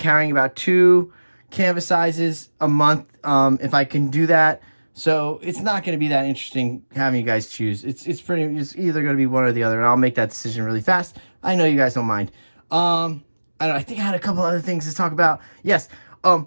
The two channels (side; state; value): both; inverted; correlation -1.00